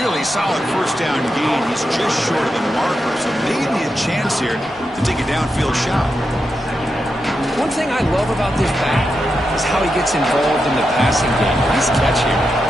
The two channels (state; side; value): normal; both; correlation 0.87